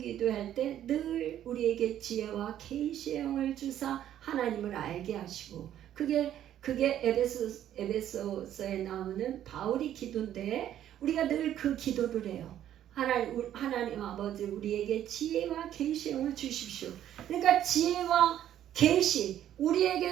때 늘 우리에게 지혜와 계시의 영을 주사 하나님을 알게 하시고 그게 에베소서에 나오는 바울이 기도인데 우리가 늘 그 기도를 해요. 하나님 아버지 우리에게 지혜와 계시의 영을 주십시오. 그러니까 지혜와 계시,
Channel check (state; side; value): quieter; left; 11.3 dB